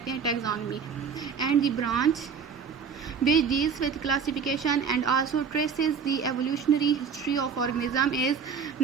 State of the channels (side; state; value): left; quieter; 6.2 dB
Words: हैं taxonomy. And the branch which deals with classification and also traces the evolutionary history of organism is